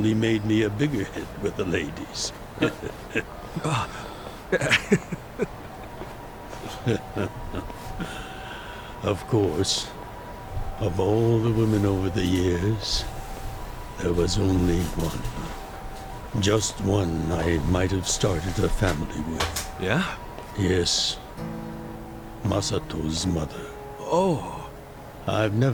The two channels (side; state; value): both; identical; correlation 1.00